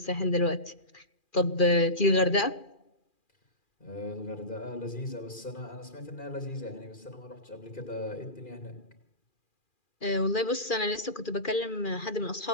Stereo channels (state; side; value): late; right; 2.4 ms